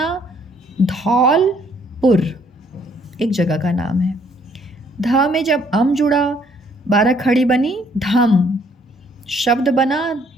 धौलपुर, एक जगह का नाम है। ध में जब अम जुड़ा 12 खड़ी बनी धम। शब्द बना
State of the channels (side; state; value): both; normal; correlation 0.64